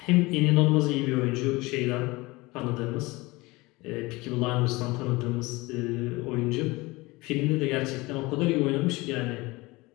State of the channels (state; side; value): quieter; right; 22.4 dB